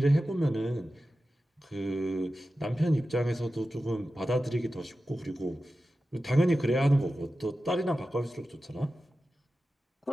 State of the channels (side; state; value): both; normal; correlation 0.93